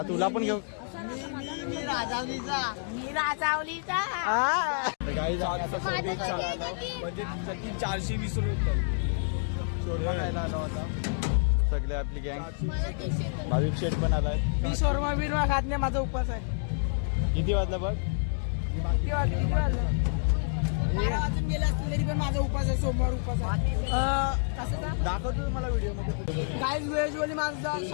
तुला पण घेऊ मी राजावलीचा म्हणजे 420 रुपये शोरमा खायला आला होता सगळे आपली गँग भाविक शेठ पण आलाय मी शोरमा बिरमा खात नाही माझा उपवास आहे किती वाजला बघ किती वाजले 12 वाजून गेले असतील तरी पण माझा उपवास आहे सोमवार उपवास आहे कसं दाखवतो मला व्हिडिओ मध्ये गाईज व्हेज वाली माझा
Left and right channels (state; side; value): silent; right; digital silence